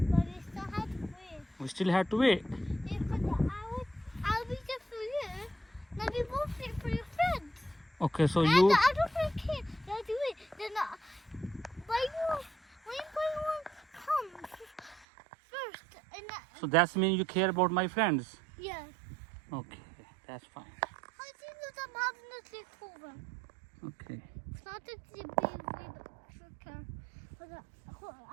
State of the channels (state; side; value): drops out; left; at 15.1 s